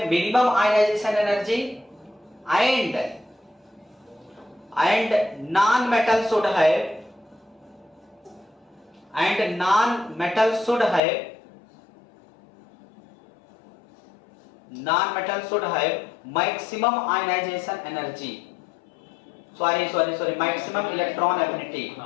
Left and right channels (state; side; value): drops out; right; at 11.0 s